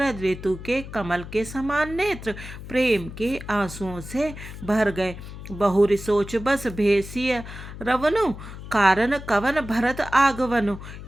ऋतु के कमल के समान नेत्र प्रेम के आंसुओं से भर गए। बहुरी सोच बस भेसिय रवनु, कारण कवन भरत आगवनु।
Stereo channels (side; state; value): left; noise; hum, 12 dB below the sound